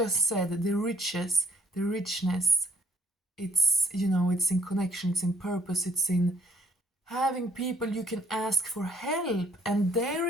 said, the riches, the richness, it's, you know, it's in connection, it's in purpose, it's in having people you can ask for help and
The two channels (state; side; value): normal; both; correlation 0.63